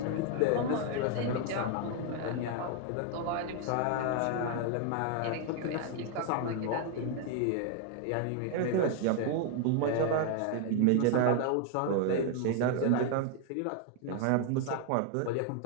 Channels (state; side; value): different; both; correlation 0.00